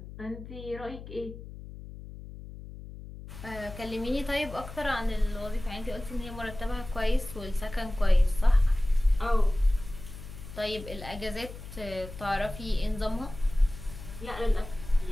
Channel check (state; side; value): noise; left; hum, 13 dB below the sound